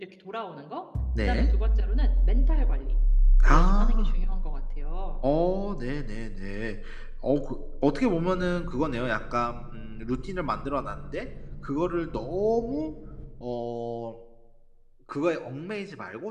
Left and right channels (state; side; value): identical; both; correlation 1.00